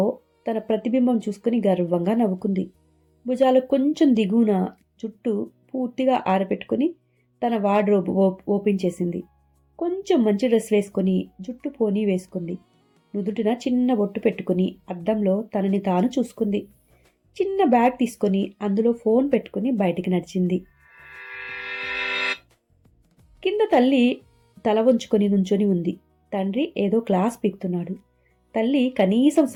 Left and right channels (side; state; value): both; identical; correlation 1.00